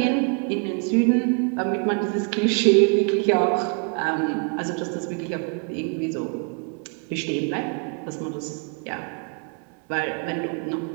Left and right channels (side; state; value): left; quieter; 38.2 dB